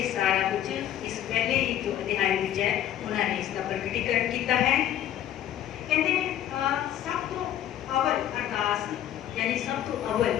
सारा कुछ इस पहले ही जो अध्याय विच है उन्होंने इसका प्रकटीकरण किया है। कहते सब तो अवल अरदास यानी सब तो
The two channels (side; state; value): right; quieter; 11.5 dB